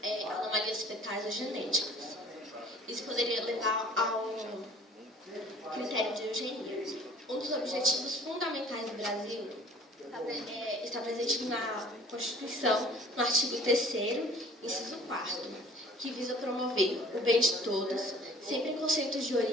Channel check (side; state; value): both; normal; correlation 0.51